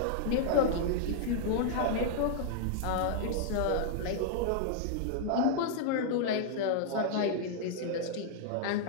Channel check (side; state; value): both; different; correlation -0.01